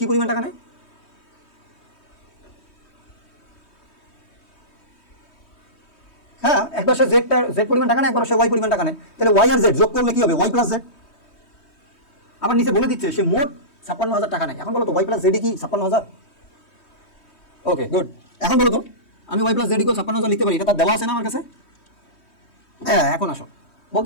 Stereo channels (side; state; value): right; late; 3.2 ms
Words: কি পরিমাণ টাকা নেয়? হ্যাঁ, একবার সে জেড পরিমাণ টাকা নেয়, একবার সে ওয়াই পরিমাণ টাকা নেয়। তাহলে ওয়াই আর জেড যোগ করলে কি হবে? Y plus Z. আবার নিচে বলে দিচ্ছে সে মোট 56,000 টাকা নেয়। এখন বলো তো ওয়াই প্লাস জেড কি 56,000? ওকে, গুড। এখন বলো তো আমি ওয়াই প্লাস জেড ইকুয়াল 56,000 লিখতে পারি, এটা তার দেওয়া আছে না আমার কাছে? হ্যাঁ, এখন আসো,